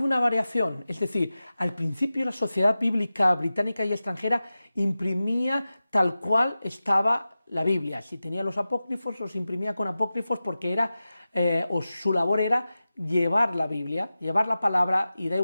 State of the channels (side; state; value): both; inverted; correlation -0.95